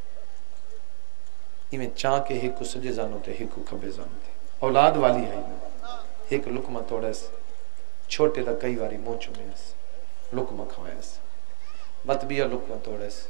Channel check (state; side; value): silent; left; digital silence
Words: ای میں چاہ کے ہی کو سجے زانو تے ہی کو کھبے زانو تے اولاد والی ہائی نا ایک لکمہ توڑیس چھوٹے دا کئی واری مو چمیس لکمہ کھوائیس بطبیہ لکمہ توڑیس